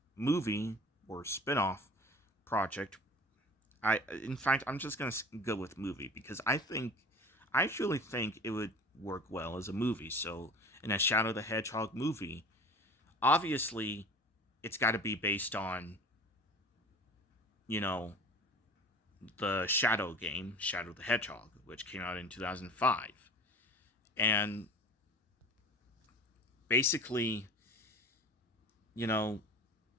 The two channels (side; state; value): both; normal; correlation 0.40